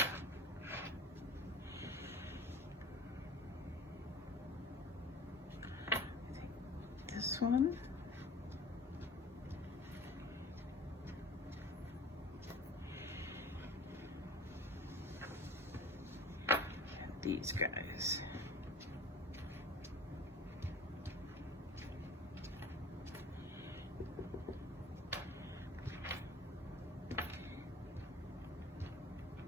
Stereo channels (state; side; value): normal; both; correlation 0.41